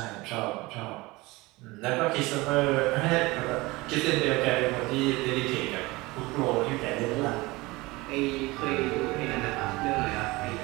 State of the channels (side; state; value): left; quieter; 22.0 dB